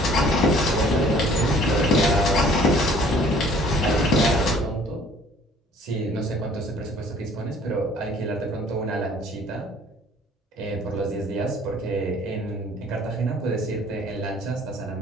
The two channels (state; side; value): normal; both; correlation 0.54